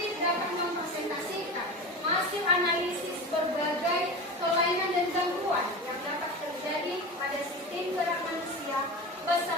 dapat mempresentasikan hasil analisis berbagai kelainan dan gangguan yang dapat terjadi pada sistem gerak manusia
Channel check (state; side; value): normal; both; correlation 0.28